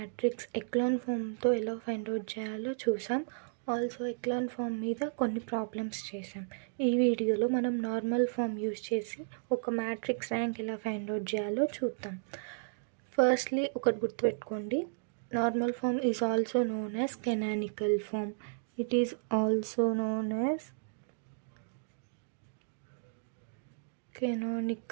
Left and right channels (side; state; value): left; silent; digital silence